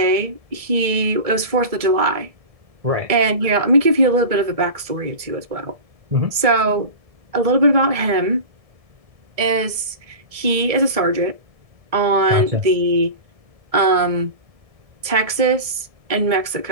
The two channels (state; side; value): late; left; 1.7 ms